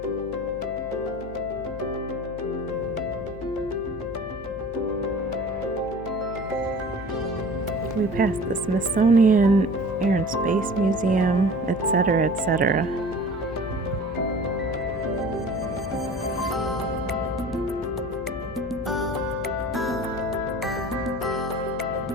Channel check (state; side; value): noise; left; hum, 14 dB below the sound